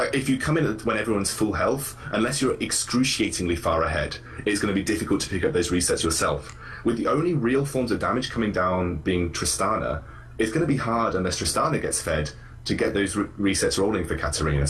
If you come in when everyone's full health, unless you're excruciatingly far ahead, it's going to be difficult to pick up those resets yourself. With the only real forms of damage coming down being Tristana, it's going to be hard unless Tristana gets fed to get those resets rolling for Katarina.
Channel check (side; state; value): both; identical; correlation 1.00